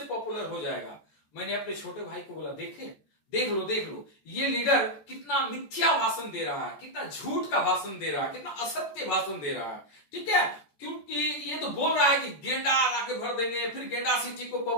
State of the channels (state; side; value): late; right; 14 ms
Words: पॉपुलर हो जाएगा। मैंने अपने छोटे भाई को बोला देख लो ये लीडर कितना मिथ्या भाषण दे रहा है, कितना झूठ का भाषण दे रहा है, कितना असत्य भाषण दे रहा है। ठीक है, क्योंकि ये तो बोल रहा है कि गेंडा लाके भर देंगे, फिर गेंडा सिटी को